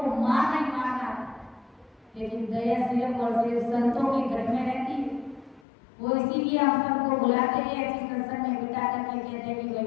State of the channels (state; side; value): drops out; right; at 5.6 s